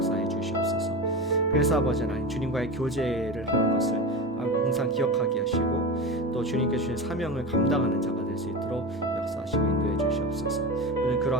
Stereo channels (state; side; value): normal; both; correlation 0.24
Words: 주시옵소서. 그래서 아버지 하나님, 주님과의 교제를 하는 것을 항상 기억하게 하시고 또 주님께 주신 사명을 감당하는 자가 될 수 있도록 역사하시고 인도해 주시옵소서. 오늘